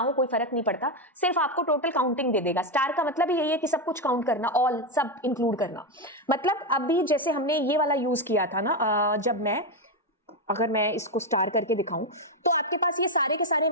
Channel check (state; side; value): normal; both; correlation 0.07